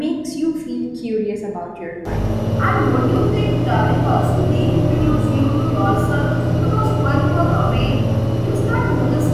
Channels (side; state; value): both; identical; correlation 1.00